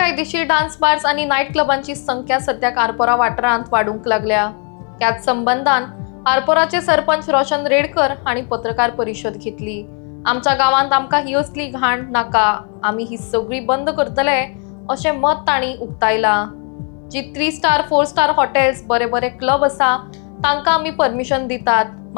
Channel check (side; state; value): right; quieter; 39.3 dB